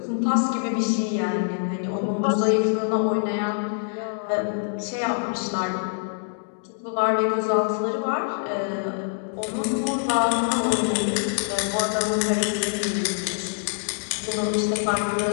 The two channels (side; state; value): right; silent; digital silence